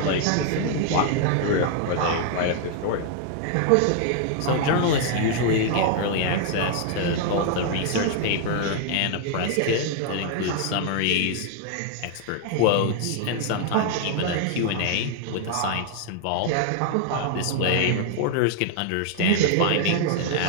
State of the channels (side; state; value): both; different; correlation 0.00